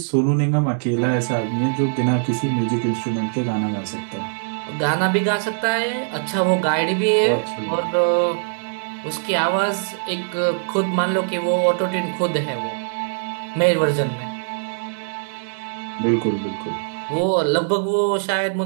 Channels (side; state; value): left; silent; digital silence